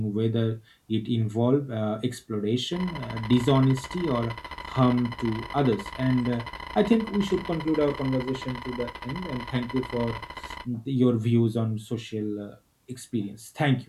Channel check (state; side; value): identical; both; correlation 1.00